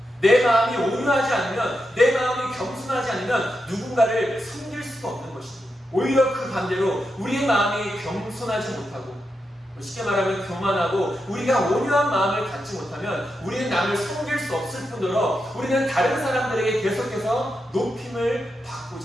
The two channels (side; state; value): both; normal; correlation 0.86